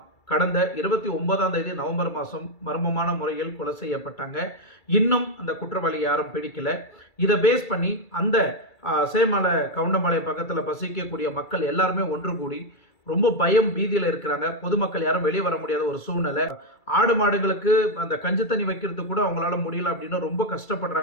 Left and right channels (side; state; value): right; late; 2.3 ms